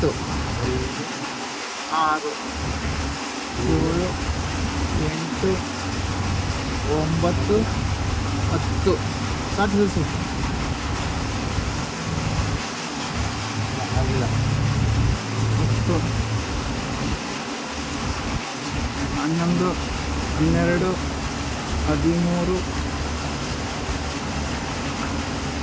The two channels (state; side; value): identical; both; correlation 1.00